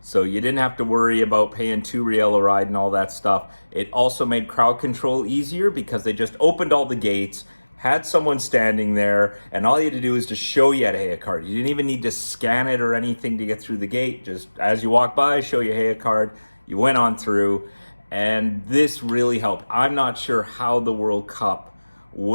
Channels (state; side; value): inverted; both; correlation -1.00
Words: you didn't have to worry about paying $2 a ride and all that stuff. It also made crowd control easier because they just opened all the gates, had someone standing there, and all you had to do was to show you had a Heya card. You didn't even need to scan it or anything to get through the gate. Just as you walk by, show your Heya card. You went on through, and this really helped. I'm not sure how the World Cup